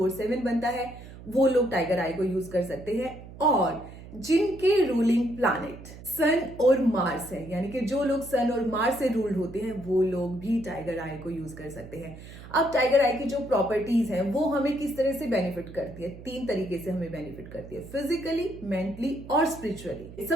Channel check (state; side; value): noise; right; hum, 16 dB below the sound